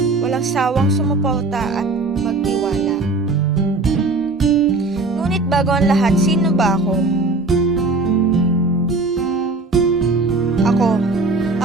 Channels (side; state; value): left; quieter; 3.4 dB